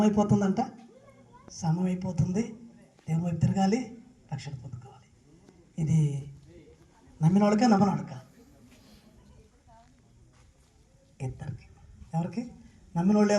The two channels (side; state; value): both; identical; correlation 1.00